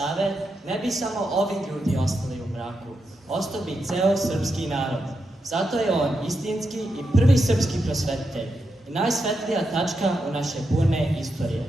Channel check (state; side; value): normal; both; correlation 0.85